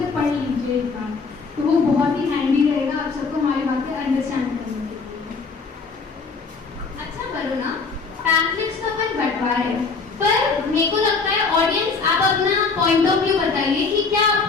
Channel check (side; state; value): right; quieter; 4.6 dB